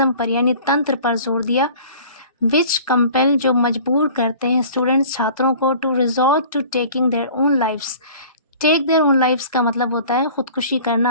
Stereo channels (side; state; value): both; inverted; correlation -0.45